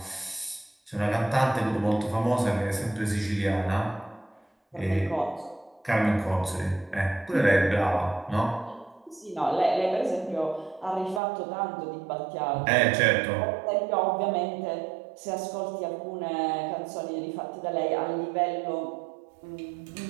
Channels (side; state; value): left; drops out; at 11.2 s